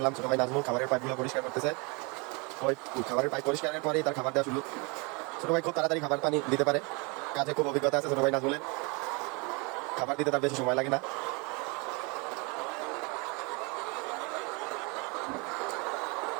ছোটো ভাই নাজমুল খাবারের পাইপগুলো পরিষ্কার করতেছে। ওই খাবারের পাইপ পরিষ্কারের পরেই তার খাবার দেওয়া শুরু। ছোটো ভাই খুব তাড়াতাড়ি খাবার পানি দিতে পারে, কাজে খুব অভিজ্ঞতা আছে ছোটো ভাই নাজমুলের। খাবার দিতে তার বেশি সময় লাগে না।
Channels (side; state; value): left; quieter; 30.1 dB